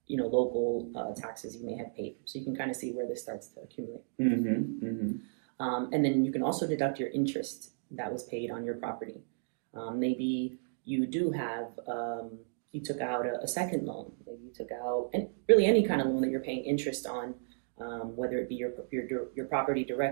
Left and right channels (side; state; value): left; silent; digital silence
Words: local taxes you may have paid. So you can kind of see where this starts to accumulate. Mm-hmm. Mm-hmm. And then you can also deduct your interest that was paid on your property. Maybe you do have you took out a second loan. Maybe you took out really any kind of loan that you're paying interest on, whether it be your property